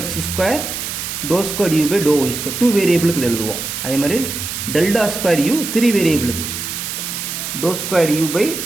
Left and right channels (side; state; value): right; noise; hiss, 5 dB below the sound